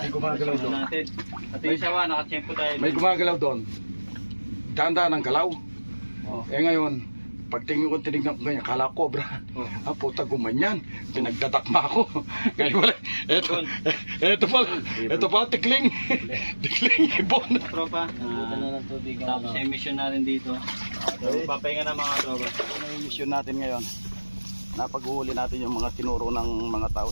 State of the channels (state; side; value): inverted; both; correlation -1.00